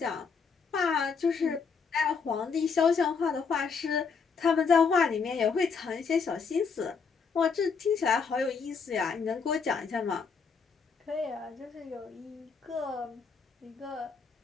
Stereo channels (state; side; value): quieter; right; 5.5 dB